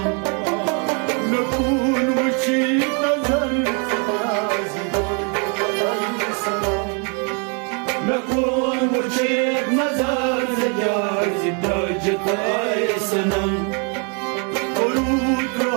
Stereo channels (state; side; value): quieter; left; 37.3 dB